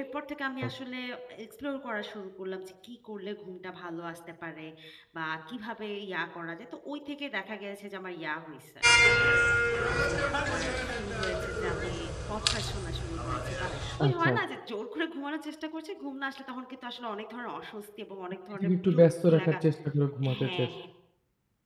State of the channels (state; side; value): identical; both; correlation 1.00